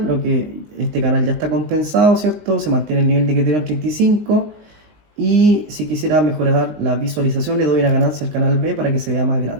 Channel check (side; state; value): left; late; 19 ms